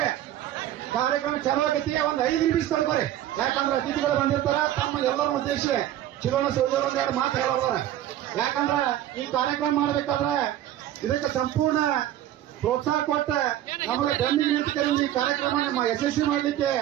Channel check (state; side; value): quieter; left; 12.6 dB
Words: ಕಾರ್ಯಕ್ರಮ ಚಾಲು ಆಗೈತಿ. ಒಂದು 5 ನಿಮಿಷ ತಡ್ಕೋರಿ. ಯಾಕಂದ್ರೆ ಅತಿಥಿಗಳು ಬಂದಿರ್ತಾರ. ತಮ್ಮ ಎಲ್ಲರ ಉದ್ದೇಶ ಚಿರೋಣ ಸೋಜರ್ ಒಂದೆರಡು ಮಾತು ಹೇಳೋದಾರ. ಯಾಕಂದ್ರ ಈ ಕಾರ್ಯಕ್ರಮ ಮಾಡಬೇಕಾದ್ರೆ ಇದಕ್ಕೆ ಸಂಪೂರ್ಣ ಪ್ರೋತ್ಸಾಹ ಕೊಟ್ಟ ನಮಗೆ ಬೆನ್ನಿಗೆ ನಿಂತು ಈ ಕಾರ್ಯಕ್ರಮ ನಮ್ಮ ಯಶಸ್ವಿ ಮಾಡಲಿಕ್ಕೆ